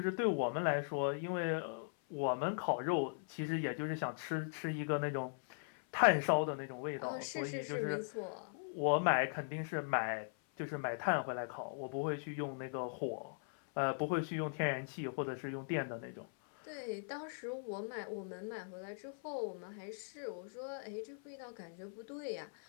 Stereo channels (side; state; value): right; silent; 51 dB below the other